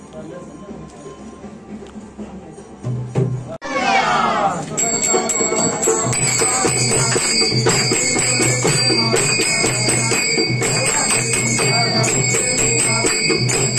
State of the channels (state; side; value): identical; both; correlation 1.00